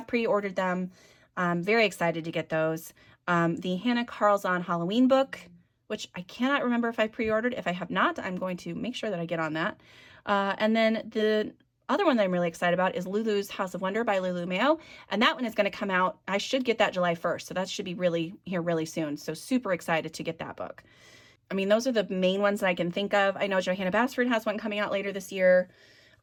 pre-ordered them. I'm very excited to get those. The Hannah Carlzon Halloween book, which I cannot remember if I pre-ordered. If I have not, I'm going to make sure that I get on that. And then the other one that I'm really excited about is Lulu's House of Wonder by Lulu Mayo. And that one is going to come out, I should get that July 1st. So that should be really soon. So super excited to get that book. I mean, those are the main ones that I can think of. I know Johanna Basford has one coming out later this year.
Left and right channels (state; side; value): identical; both; correlation 1.00